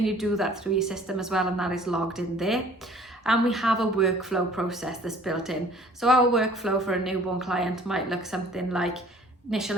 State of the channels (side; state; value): both; normal; correlation 0.52